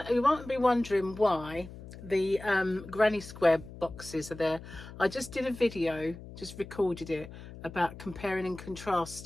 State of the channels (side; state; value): left; noise; hum, 15 dB below the sound